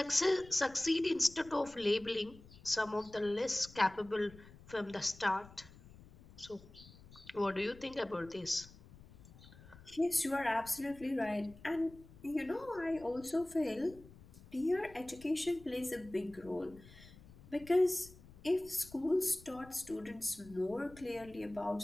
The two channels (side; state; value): left; noise; rumble, 21 dB below the sound